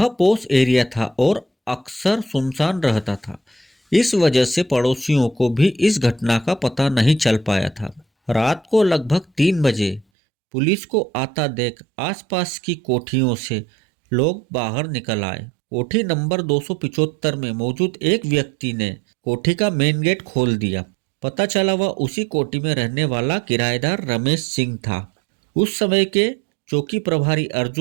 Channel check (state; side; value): drops out; left; at 10.1 s